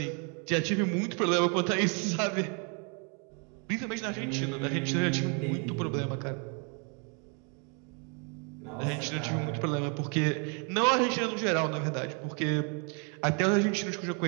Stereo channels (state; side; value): quieter; left; 36.3 dB